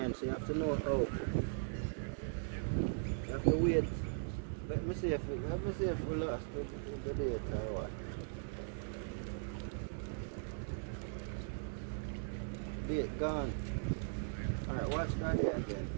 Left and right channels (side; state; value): left; silent; 52 dB below the other